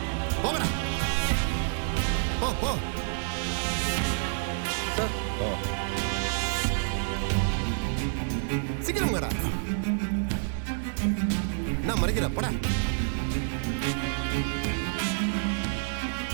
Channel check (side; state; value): left; silent; digital silence